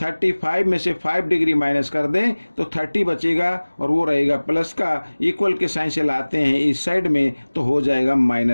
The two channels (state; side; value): inverted; both; correlation -1.00